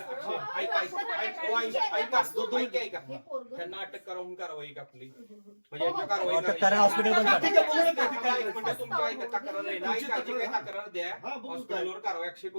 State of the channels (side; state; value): both; inverted; correlation -1.00